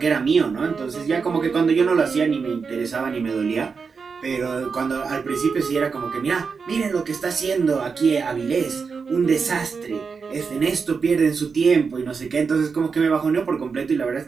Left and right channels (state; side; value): quieter; left; 5.3 dB